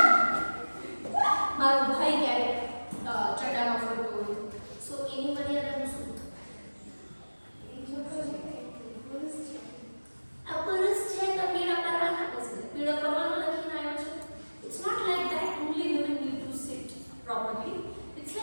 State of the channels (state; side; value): inverted; both; correlation -1.00